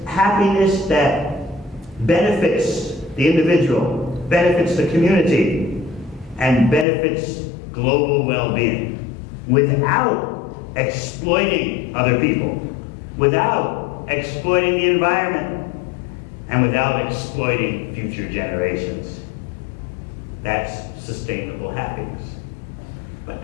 happiness that benefits the individual, benefits the community, and benefits global well-being without exploiting other people, without exploiting the environment, and without exploiting future generations. That's sustainable happiness. But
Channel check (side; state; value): right; drops out; at 6.9 s